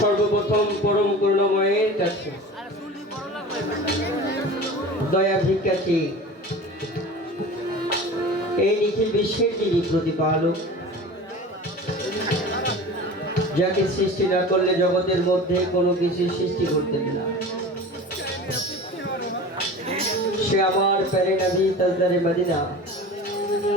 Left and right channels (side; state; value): both; normal; correlation 0.36